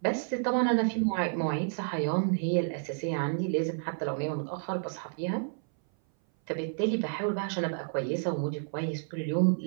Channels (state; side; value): silent; left; 58 dB below the other